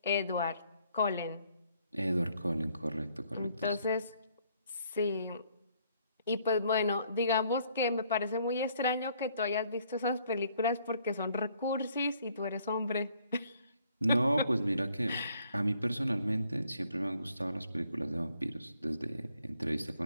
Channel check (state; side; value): inverted; both; correlation -0.66